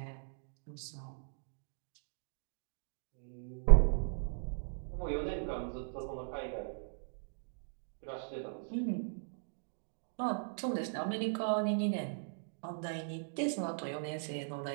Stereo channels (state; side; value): silent; left; digital silence